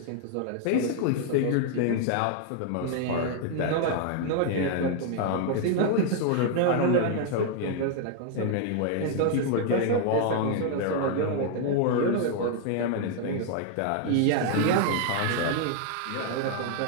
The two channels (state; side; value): different; both; correlation 0.00